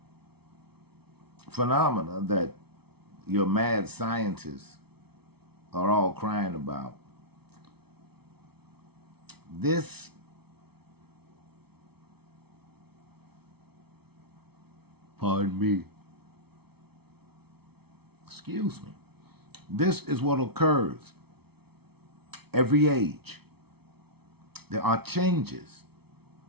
phenomena that your mad scientists are all crying about, this pardon me. Excuse me. This is what occurs every age. There are changes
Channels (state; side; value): late; left; 0.97 ms